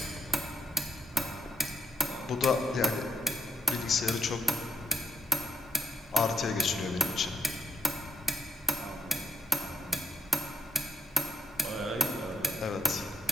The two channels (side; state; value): both; normal; correlation 0.76